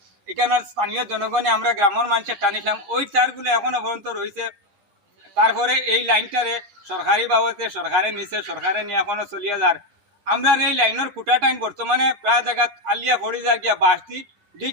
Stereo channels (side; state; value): left; late; 9.9 ms